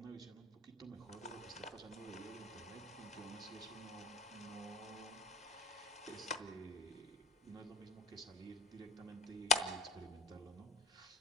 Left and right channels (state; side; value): normal; both; correlation 0.34